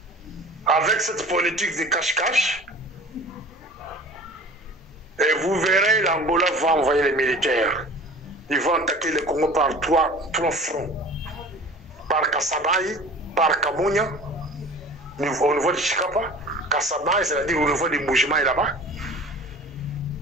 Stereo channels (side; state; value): both; normal; correlation 0.42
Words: Avec cette politique de cache-cache, et vous verrez, l'Angola va envoyer les militaires. Ils vont attaquer le Congo par trois fronts. Par Kassabaye, par Kamunya, au niveau de Chikapa. Kassabaye, c'est-à-dire au niveau des Mbujimaï là-bas.